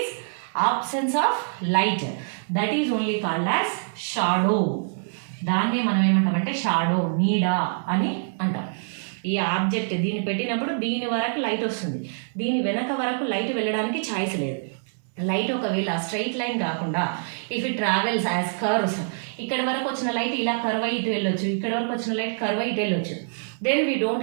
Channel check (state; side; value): silent; left; 62 dB below the other